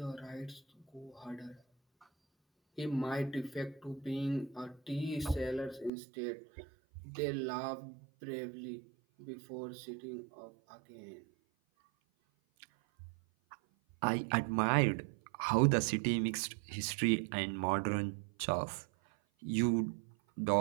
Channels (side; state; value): left; drops out; at 5.9 s